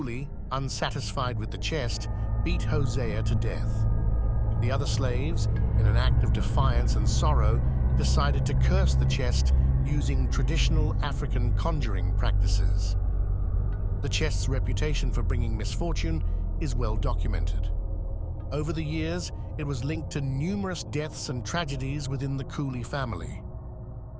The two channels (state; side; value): identical; both; correlation 1.00